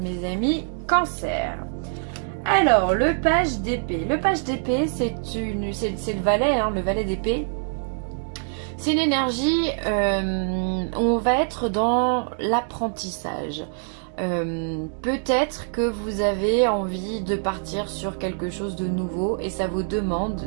amis cancer. Alors, le page d'épée. Le page d'épée, c'est le valet, hein, le valet d'épée. C'est une énergie où on va être dans l'apprentissage. Peut-être que vous avez envie de partir sur quelque chose de nouveau et ça vous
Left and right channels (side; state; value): left; silent; digital silence